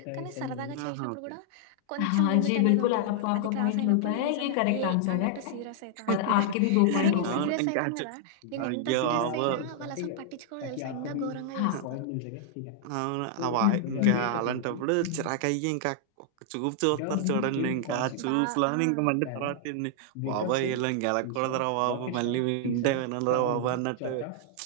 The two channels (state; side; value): different; both; correlation -0.01